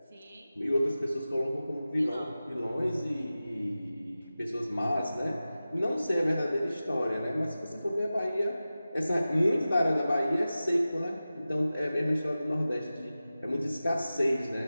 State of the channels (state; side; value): inverted; both; correlation -0.95